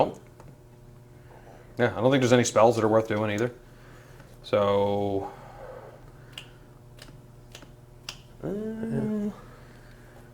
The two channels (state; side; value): identical; both; correlation 1.00